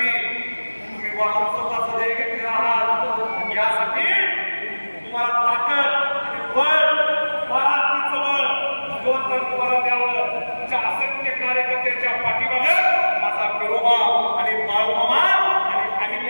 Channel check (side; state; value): both; inverted; correlation -1.00